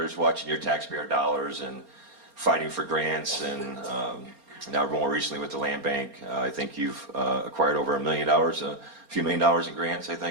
watching your taxpayer dollars and fighting for grants, and now more recently with the land bank. I think you've acquired over $1 million, a few $1 million in grants, I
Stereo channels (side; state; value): left; late; 4.3 ms